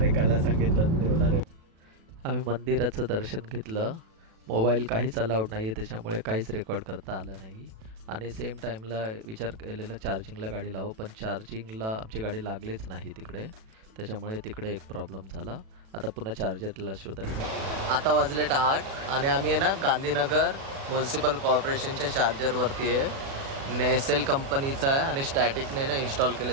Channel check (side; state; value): left; late; 36 ms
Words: काला सांगितलं। आम्ही मंदिराचं दर्शन घेतलं। मोबाईल काहीच अलाउड नाही आहे, त्याच्यामुळे काहीच रेकॉर्ड करता आलं नाही। आणि सेम टाईमला विचार केलेला चार्जिंगला गाडी लावू, पण चार्जिंगला आमची गाडी लागलीच नाही तिकडे, त्याच्यामुळे तिकडे एक प्रॉब्लेम झाला। आता पुन्हा चार्जरला शोधायला। आता वाजलेत 8 आणि आम्ही आहे ना गांधीनगर म्युन्सिपल कॉर्पोरेशनच्या चार्जरवरती आहे। नेसेल कंपनीचा आहे आणि स्टॅटिकने ना इन्स्टॉल